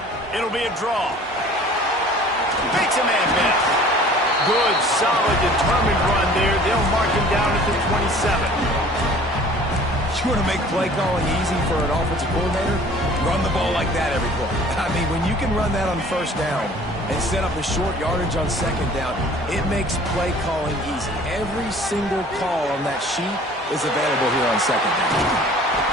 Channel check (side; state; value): both; normal; correlation 0.49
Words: It'll be a draw. Makes a man miss. Good, solid, determined run there. They'll mark him down at the 27. You want to make play calling easy for an offensive coordinator? Run the ball like that every play. I mean, when you can run that on 1st down and set up a short yardage on 2nd down, it makes play calling easy. Every single call on that sheet is available here on 2nd down.